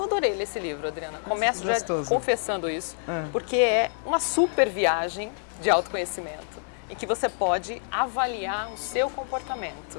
adorei ler esse livro, Adriana. Começo já confessando isso, porque é uma super viagem de autoconhecimento em que você pode avaliar o seu comportamento,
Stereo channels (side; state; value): right; silent; digital silence